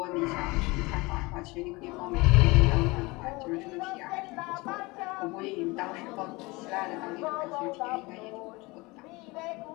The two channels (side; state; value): right; quieter; 23.9 dB